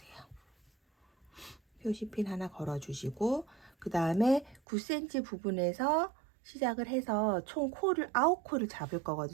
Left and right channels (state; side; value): drops out; left; at 4.6 s